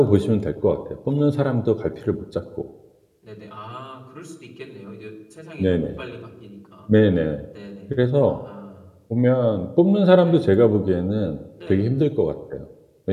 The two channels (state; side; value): identical; both; correlation 1.00